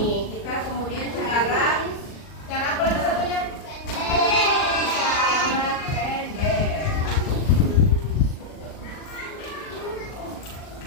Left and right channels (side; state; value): right; late; 39 ms